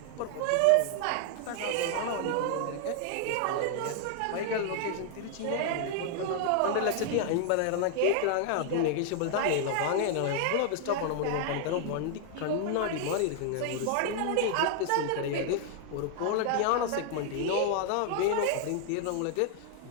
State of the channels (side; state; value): both; different; correlation 0.00